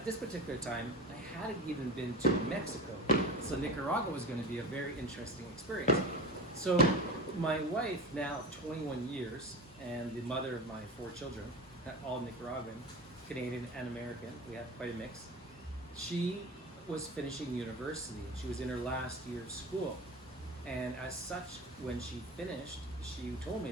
this particular time, I hadn't even been to Mexico, so Nicaragua was going to be a very interesting experience. So my wife, now of 21 years, and the mother of my 4 children, all Nicaraguan, Canadian and American, we have quite a mix, she was finishing university, and she was in her last year of school. And as such, when she finished, she told me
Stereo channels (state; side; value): normal; both; correlation 0.30